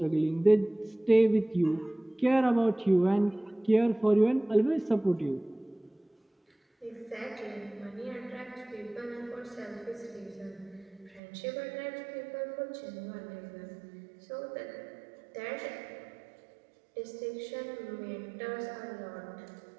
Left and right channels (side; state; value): left; drops out; at 11.2 s